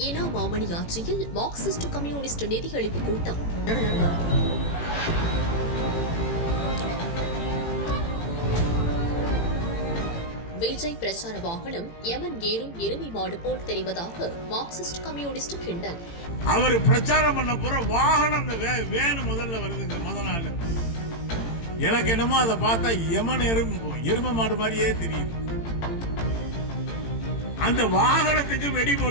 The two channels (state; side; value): late; right; 18 ms